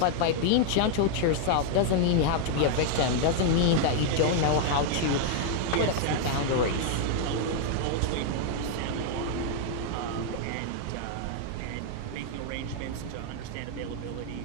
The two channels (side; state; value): both; different; correlation 0.00